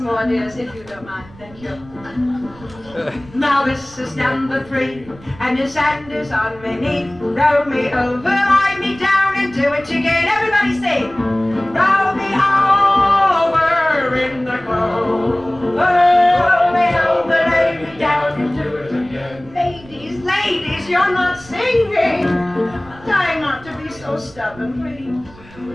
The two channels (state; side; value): noise; right; rumble, 22 dB below the sound